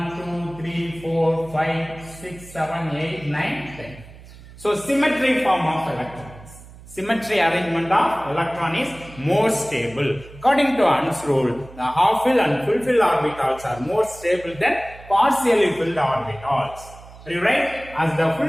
2, 3, 4, 5, 6, 7, 8, 9, 10. So symmetry form of electrons. Symmetry arrangement of electron is more stable. According to Hund's rule, the half-filled and full-filled orbitals are more stable than partially filled orbitals. Are you right? As the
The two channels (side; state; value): right; noise; hum, 19 dB below the sound